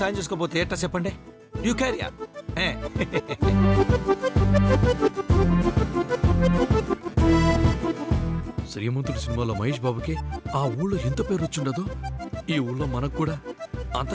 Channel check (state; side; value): identical; both; correlation 1.00